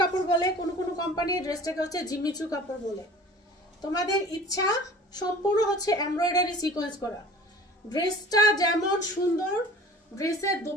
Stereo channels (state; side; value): normal; both; correlation 0.44